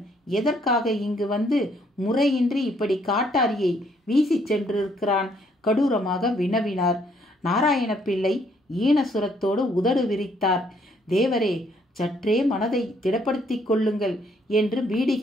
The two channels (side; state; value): both; normal; correlation 0.67